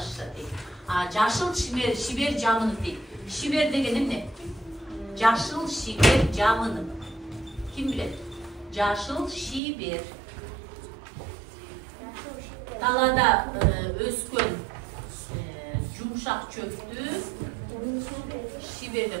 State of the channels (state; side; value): drops out; left; at 9.6 s